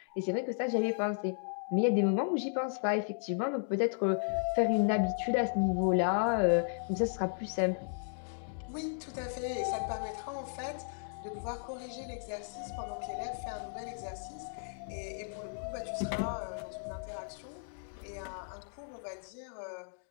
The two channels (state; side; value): silent; right; digital silence